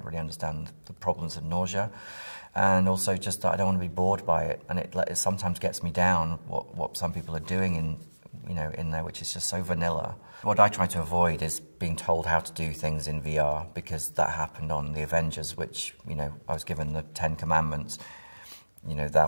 really understand the problems of nausea, and also just that I don't want to be bored by it, and it sometimes gets me down what some people are doing in there, which is just so vanilla. What I try to avoid is being told how to do things in VR, because that happened on the Avengers, which, I was given the 10 Commandments,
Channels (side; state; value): both; inverted; correlation -1.00